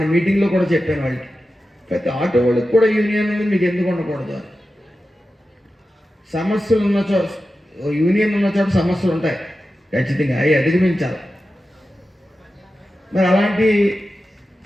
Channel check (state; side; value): normal; both; correlation 0.92